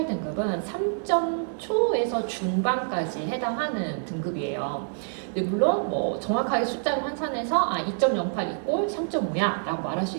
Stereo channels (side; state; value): left; silent; digital silence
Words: 3점 초에서 중반까지 해당하는 등급이에요. 근데 물론 뭐 정확하게 숫자로 환산해서 2.08 이꼴 3.5야 라고 말할 수